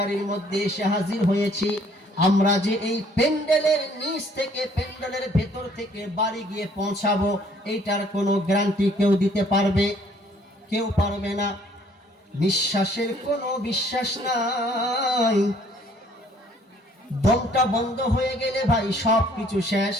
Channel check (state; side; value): normal; both; correlation 0.61